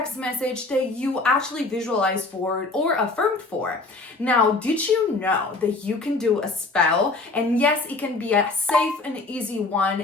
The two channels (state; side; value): quieter; right; 3.4 dB